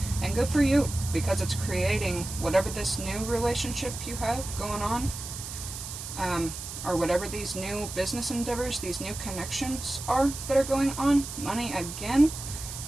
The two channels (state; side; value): noise; right; hiss, 9 dB below the sound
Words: And good for you, because it's creating whatever this new relationship you have going on, or whatever these new business endeavors, these new connections are that are going on. Money again,